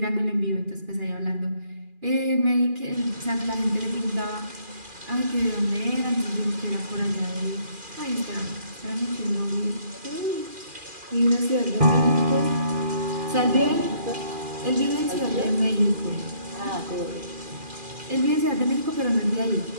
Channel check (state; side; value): late; left; 2.4 ms